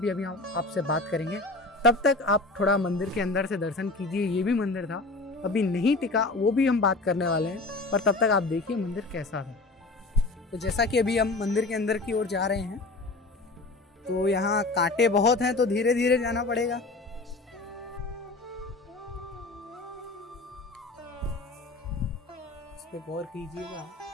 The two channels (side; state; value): right; quieter; 3.2 dB